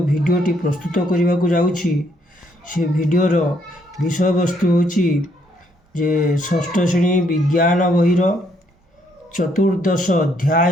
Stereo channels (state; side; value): normal; both; correlation 0.71